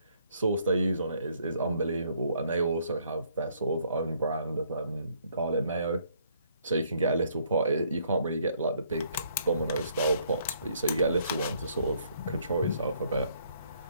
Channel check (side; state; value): both; inverted; correlation -0.66